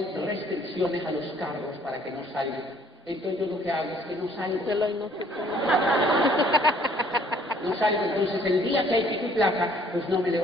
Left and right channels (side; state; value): both; normal; correlation 0.60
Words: restricciones a los carros para que no salgan. Entonces yo lo que hago es que no salgo. No salgo, entonces el día que hay pico y placa, pues no me